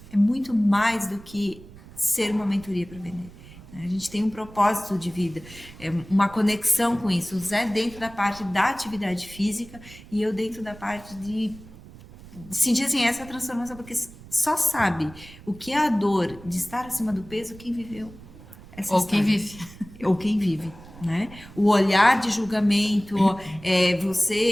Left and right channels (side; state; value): right; noise; rumble, 19 dB below the sound